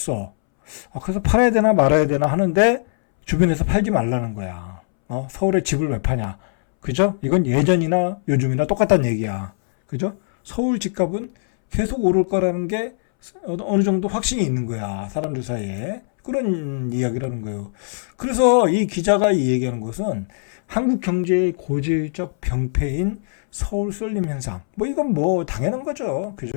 그래서 팔아야 되나 말아야 되나 하는데 주변에서 팔지 말라는 거야. 서울에 집을 왜 파냐. 그죠? 이건 예전이나 요즘이나 똑같다는 얘기야. 그죠? 서울 집값은 계속 오를 거라는 게 어느 정도 확신이 있는 거야. 사람들 사이에. 그런 이야기라는 거예요. 그래서 이 기자가 이 얘기하는 것은 한국 경제의 고질적 병폐인 서울 쏠림 현상. 이건 당연한 거죠.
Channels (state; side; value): silent; right; 65 dB below the other